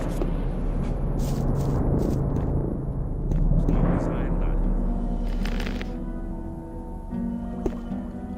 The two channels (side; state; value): both; identical; correlation 1.00